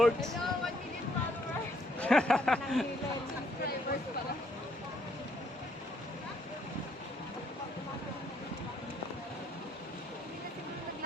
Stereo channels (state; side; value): normal; both; correlation 0.69